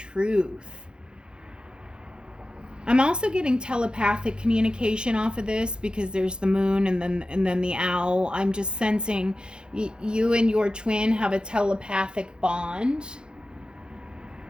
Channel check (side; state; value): left; late; 0.049 ms